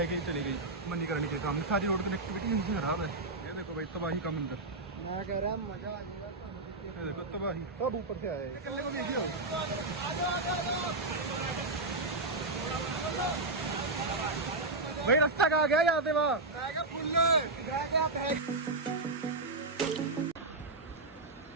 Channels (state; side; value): quieter; left; 3.1 dB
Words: के चली गई। मन नहीं करनी चाहिए सामने, सारी रोड कनेक्टिविटी यहीं से खराब है। ये देखो भाई तबाही का मंदिर, मैं कह रहा मजा आ जाएगा। ये देखो तबाही, सब ऊपर से आए हैं। को भेजियो भाई, रास्ता कहाँ गया यहाँ से वहाँ?